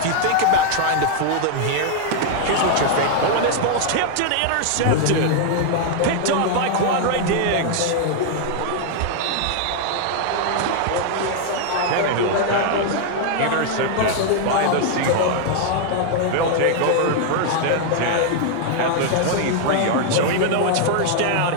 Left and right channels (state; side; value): different; both; correlation 0.00